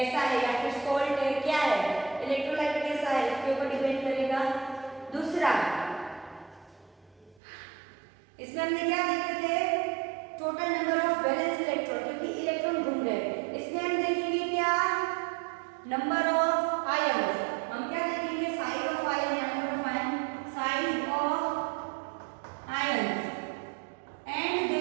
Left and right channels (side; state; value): left; drops out; at 7.4 s